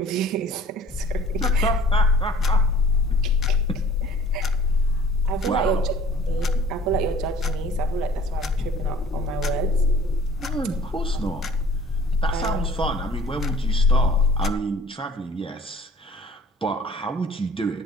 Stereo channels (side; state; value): both; normal; correlation 0.50